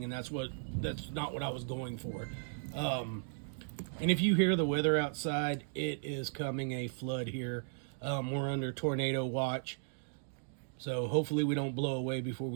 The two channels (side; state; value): left; silent; digital silence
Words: and that's not what I was going for. And if you hear the weather outside, it is coming a flood here. We're under tornado watch, so hopefully we don't blow away before